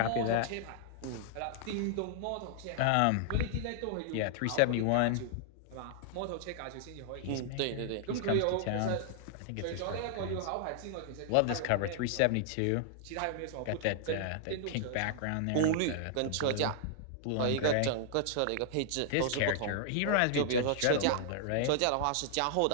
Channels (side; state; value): both; different; correlation -0.01